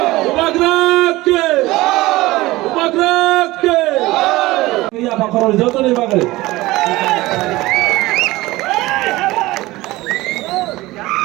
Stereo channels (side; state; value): left; quieter; 19.1 dB